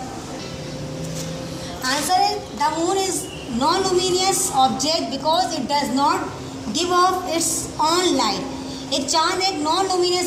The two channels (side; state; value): both; identical; correlation 1.00